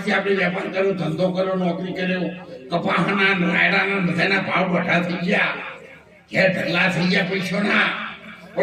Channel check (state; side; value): identical; both; correlation 1.00